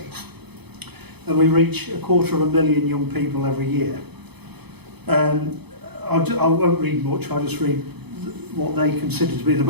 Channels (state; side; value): late; left; 0.98 ms